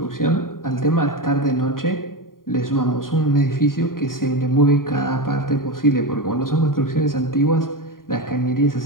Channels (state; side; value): late; right; 0.91 ms